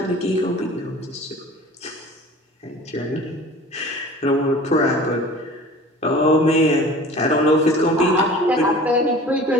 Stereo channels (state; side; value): normal; both; correlation 0.43